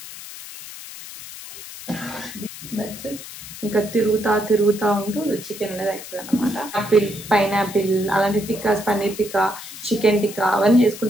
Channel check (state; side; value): noise; left; hiss, 13 dB below the sound